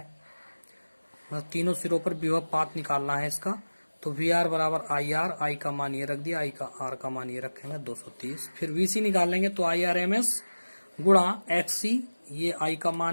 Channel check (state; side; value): inverted; both; correlation -1.00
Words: मतलब तीनों सिरों पर विभवपात निकालना है इसका, तो VR बराबर IR, I का मान ये रख दिया, I का R का मान ये रखेंगे 230। फिर VC निकालेंगे तो IRMS गुणा XC, ये I का